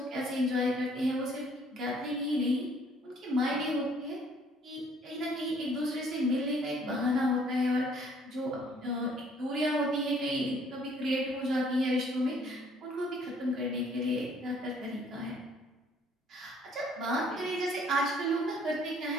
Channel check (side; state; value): both; normal; correlation 0.61